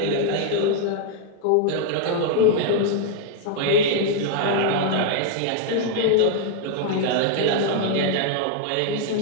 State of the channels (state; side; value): different; both; correlation 0.00